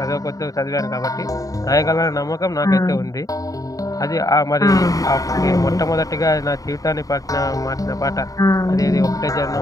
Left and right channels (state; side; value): late; right; 0.17 ms